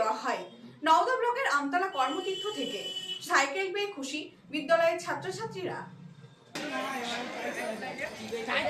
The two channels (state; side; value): identical; both; correlation 1.00